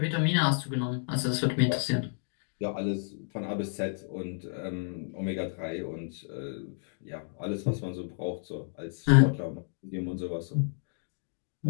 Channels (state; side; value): silent; right; 57 dB below the other